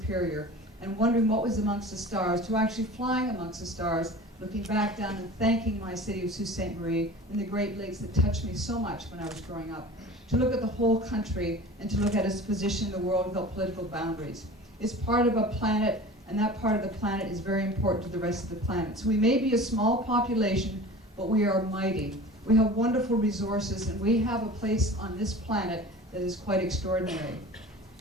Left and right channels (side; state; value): both; normal; correlation 0.39